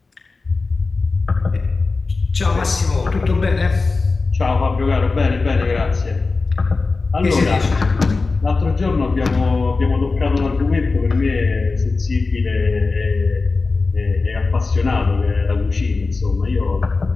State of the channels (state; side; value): quieter; right; 3.9 dB